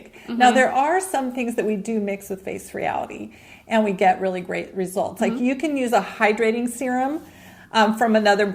Mm-hmm. Now, there are some things that we do mix with face reality, and we get really great results. Like you can use a hydrating serum from another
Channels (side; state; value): both; identical; correlation 1.00